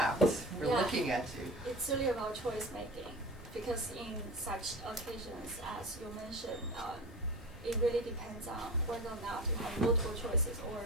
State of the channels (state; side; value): normal; both; correlation 0.32